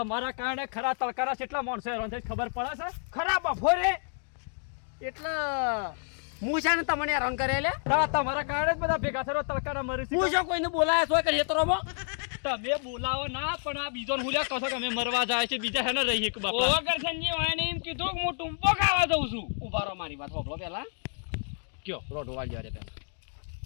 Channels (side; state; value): right; silent; 58 dB below the other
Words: કારણે ખરા તડકારા કેટલા માણસો હેરાન થાય ખબર પડે છે ખરા બફોરે એટલે હું છે ને તમને હેરાન કરે લે તમારા કારણે જ બધા ભેગા થયો તડકારા મરી હું જો કોઈને બોલાયા છો કે ખેતરોમાં તમે બોલાવો ના પણ આ બીજો હુલ્યા કહો છો કે અમે મરવા જાય છે બીજા હેને રહીએ કે બાપા ઓવા કરશનજી વાયને એમ કીધું કે હું ટૂંપો ખાવા દઉં છું ઉભા રહો મારી વાત હોભળો પહેલા કયો રોડ વાળી જાય પહેલા